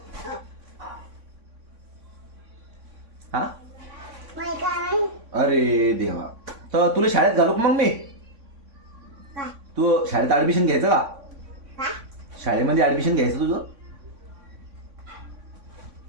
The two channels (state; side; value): late; left; 3.6 ms